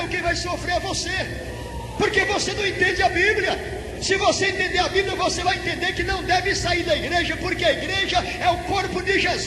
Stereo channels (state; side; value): identical; both; correlation 1.00